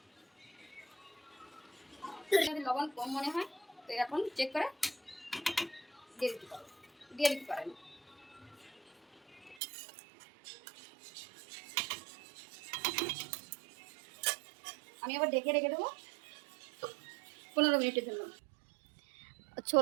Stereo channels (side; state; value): left; drops out; at 9.6 s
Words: যদি লবণ কম মনে হয় তো এখন চেক করে দিয়ে দিতে পারেন। আমি আবার ঢেকে রেখে দেবো 15 মিনিটের জন্য।